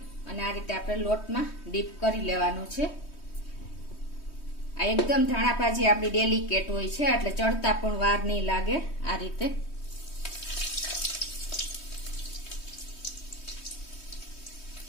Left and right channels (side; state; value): right; late; 3.2 ms